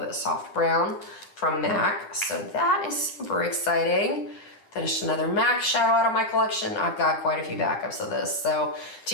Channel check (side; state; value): right; late; 10 ms